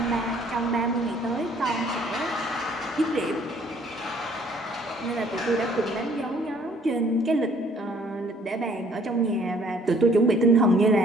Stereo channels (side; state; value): both; normal; correlation 0.60